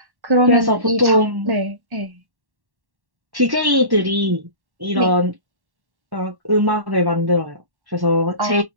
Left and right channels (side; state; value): left; late; 1.1 ms